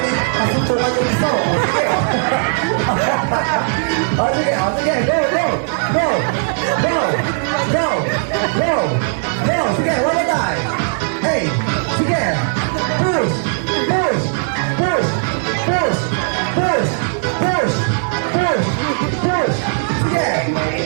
may kasuntukan yung iso. O, sige. O, sige. O, sige. Go, go. Go. Go. Go. Go. Go. Sige, one more time. Hey. Sige. Push. Push. Push. Push. Push. Push. Push. Push. Sige.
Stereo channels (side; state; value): left; silent; digital silence